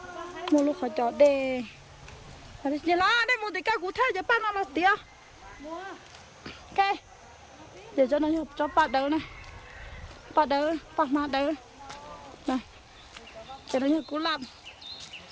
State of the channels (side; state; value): both; identical; correlation 1.00